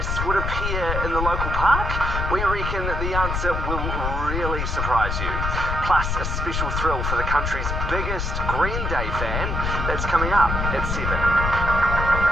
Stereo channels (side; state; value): left; noise; rumble, 1 dB below the sound